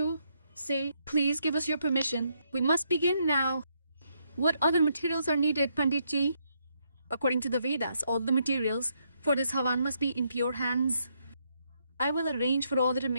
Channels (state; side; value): inverted; both; correlation -0.75